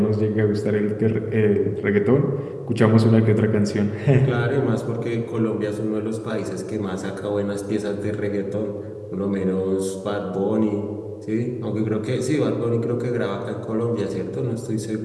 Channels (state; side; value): identical; both; correlation 1.00